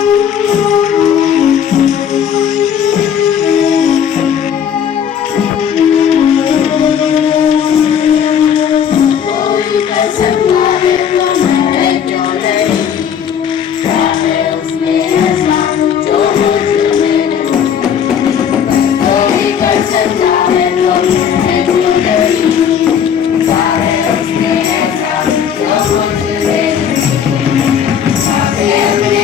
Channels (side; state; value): right; quieter; 8.3 dB